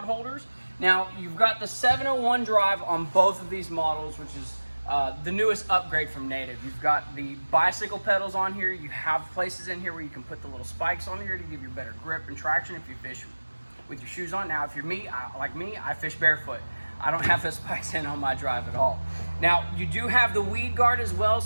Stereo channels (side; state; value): both; inverted; correlation -1.00